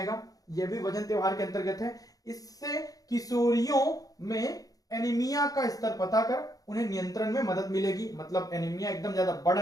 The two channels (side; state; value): right; late; 0.17 ms